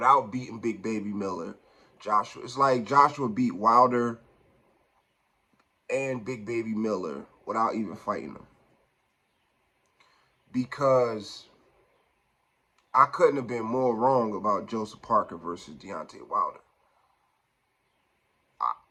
beating Big Baby Miller, it's like Joshua beat Wilder and Big Baby Miller without even fighting them. Because I couldn't have been more wrong about Joseph Parker versus Deontay Wilder.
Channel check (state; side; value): identical; both; correlation 1.00